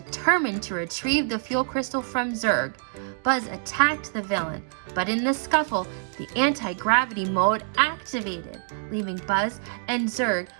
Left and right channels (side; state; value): left; silent; digital silence